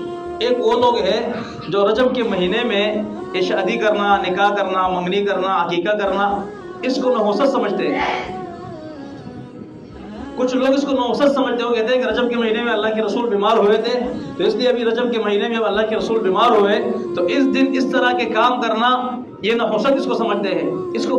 ایک وہ لوگ ہیں جو رجب کے مہینے میں شادی کرنا، نکاح کرنا، منگنی کرنا، عقیقہ کرنا اس کو نحوست سمجھتے ہیں۔ کچھ لوگ اس کو نحوست سمجھتے ہو، کہتے ہیں کہ رجب کے مہینے میں اللہ کے رسول بیمار ہوئے تھے، تو اس لیے ابھی رجب کے مہینے میں اللہ کے رسول بیمار ہوئے تو اس دن اس طرح کے کام کرنا، یہ نحوست اس کو سمجھتے ہیں، اس کو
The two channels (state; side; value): identical; both; correlation 1.00